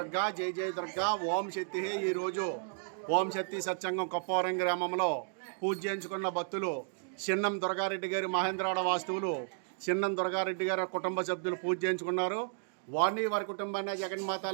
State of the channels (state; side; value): silent; left; digital silence